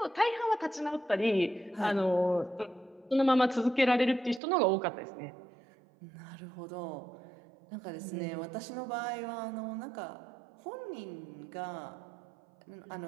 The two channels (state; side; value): drops out; left; at 4.4 s